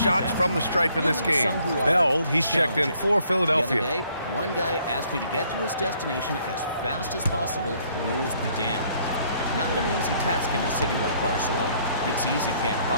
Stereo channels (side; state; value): both; inverted; correlation -0.65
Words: from the stripe in this game. Bell, he's checked in for The other Philadelphia. day, one guy asked me to get to his destination as fast as possible, rules be damned. Not an easy task in a city like Barcelona. It's easy to get